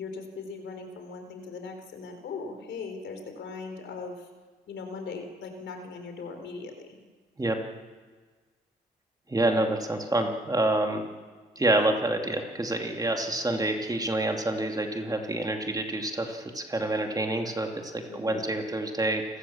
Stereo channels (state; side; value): normal; both; correlation 0.60